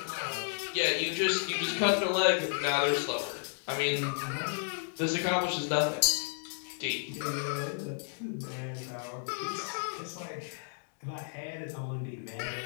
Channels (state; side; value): silent; right; digital silence